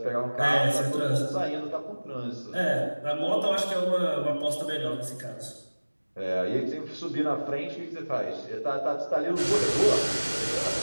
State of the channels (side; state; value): both; inverted; correlation -1.00